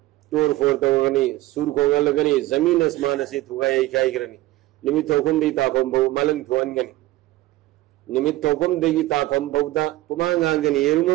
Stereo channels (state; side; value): quieter; left; 17.4 dB